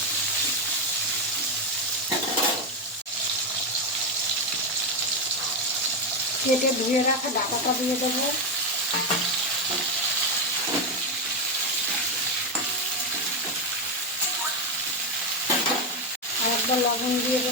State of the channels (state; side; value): normal; both; correlation 0.09